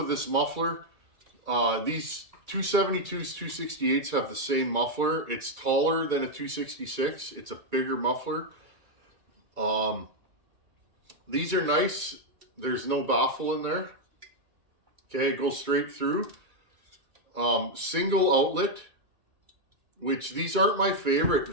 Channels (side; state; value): left; late; 2.3 ms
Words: this muffler. These 272s, 268s have the same muffler. It's taller than a 266. It's a bigger muffler. These are nice. There's no baffle in there. Okay, it goes straight through. Single outlet, which these aren't my